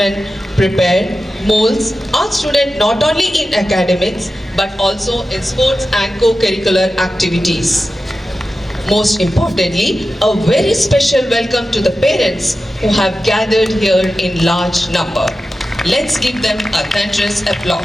prepare, molds our students not only in academics but also in sports and co-curricular activities. Most importantly, a very special welcome to the parents who have gathered here in large number. Let's give them a thunderous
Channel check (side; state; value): both; normal; correlation 0.93